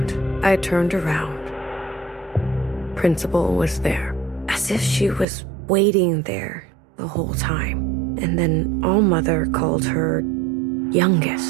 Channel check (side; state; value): left; drops out; at 5.2 s